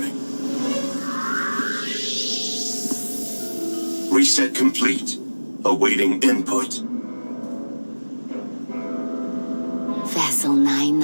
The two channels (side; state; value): both; inverted; correlation -1.00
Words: Reset complete. Awaiting input. Vessel